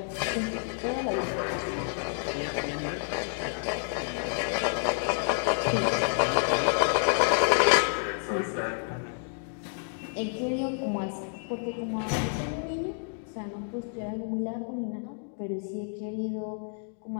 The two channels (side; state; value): right; silent; 58 dB below the other